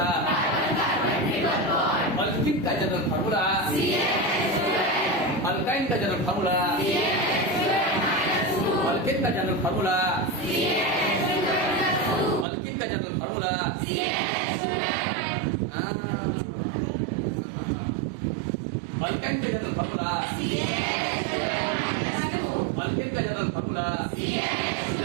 अल्किन का जनरल फार्मूला, अल्काइन का जनरल फार्मूला, अल्किन का जनरल फार्मूला, अल्किन का जनरल फार्मूला. अल्काइन का जनरल फार्मूला, अल्किन का जनरल फार्मूला,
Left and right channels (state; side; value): drops out; left; at 12.5 s